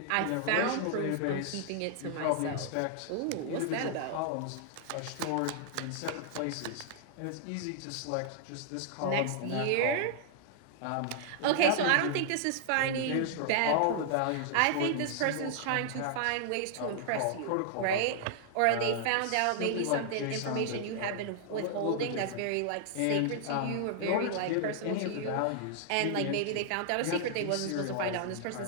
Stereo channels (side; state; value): both; different; correlation -0.01